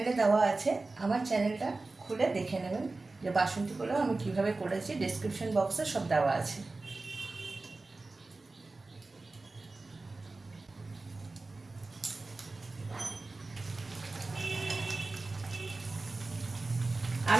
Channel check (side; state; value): left; quieter; 3.4 dB